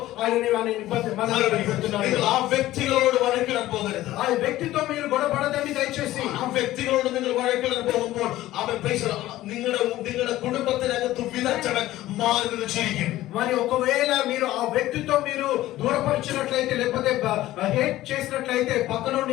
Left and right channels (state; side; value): quieter; right; 15.5 dB